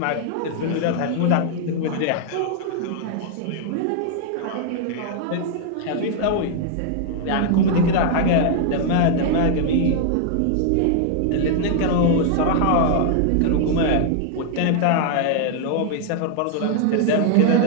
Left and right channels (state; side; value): different; both; correlation 0.00